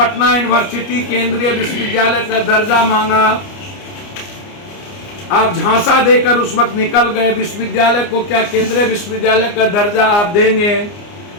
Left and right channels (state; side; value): late; right; 29 ms